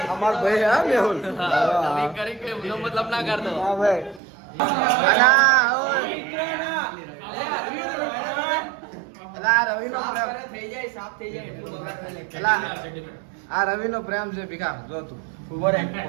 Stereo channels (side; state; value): left; drops out; at 4.2 s